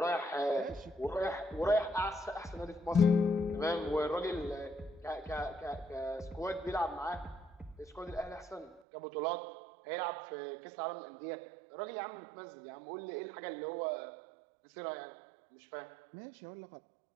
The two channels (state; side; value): drops out; left; at 8.8 s